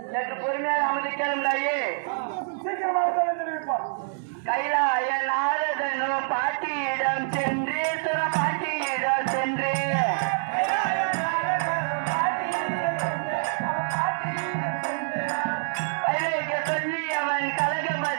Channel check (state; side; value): silent; left; digital silence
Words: சற்று பொறுமையாக அமர்ந்து கேளுங்களாயே. சீக்கிரமாக தெரிவிப்பார். கைலாய நாரதனோ பாட்டியிடம் சென்று பாட்டியிடம் சென்று வைரேக சொல்லி அவன்